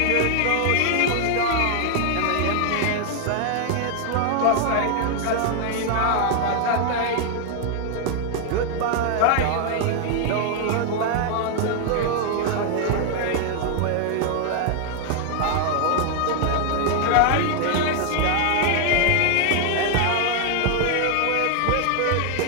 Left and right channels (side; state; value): both; different; correlation 0.00